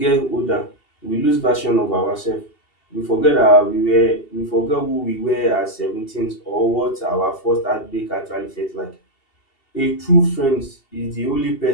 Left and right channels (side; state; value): right; late; 2.7 ms